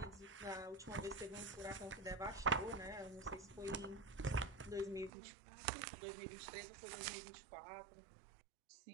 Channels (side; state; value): left; drops out; at 5.1 s